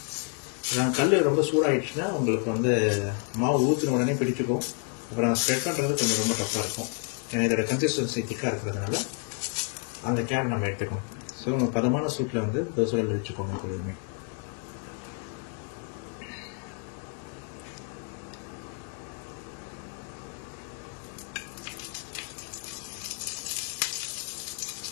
கல் ரொம்ப சூடாகிடுச்சுன்னா உங்களுக்கு வந்து மாவு ஊற்றின உடனே பிடிச்சிக்கும். அப்புறம் ஸ்ப்ரெட் பண்ணுறது கொஞ்சம் ரொம்ப டஃப்பாக இருக்கும். ஏன்னா இதோட கன்சிஸ்டன்சி திக்காக இருக்கிறதுனால அந்த கேரை நம்ம எடுத்துக்கணும். ஸோ பதமான சூட்டில் வந்து தோசைகள் வச்சுக்கோங்க எப்பொழுதுமே.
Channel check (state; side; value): quieter; right; 36.6 dB